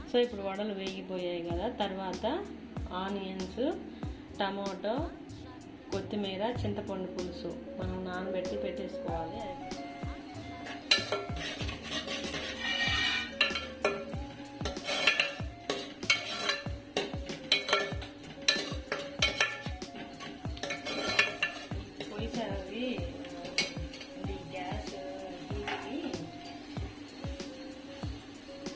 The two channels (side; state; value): both; identical; correlation 1.00